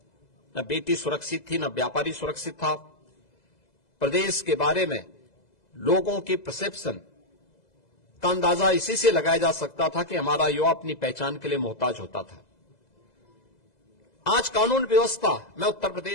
न बेटी सुरक्षित थी, न व्यापारी सुरक्षित था। प्रदेश के बारे में लोगों की परसेप्शन का अंदाजा इसी से लगाया जा सकता था कि हमारा युवा अपनी पहचान के लिए मोहताज होता था। आज कानून व्यवस्था में उत्तर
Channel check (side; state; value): right; late; 2.0 ms